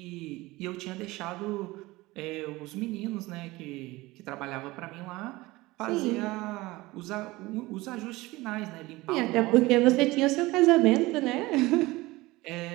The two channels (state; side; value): quieter; left; 20.4 dB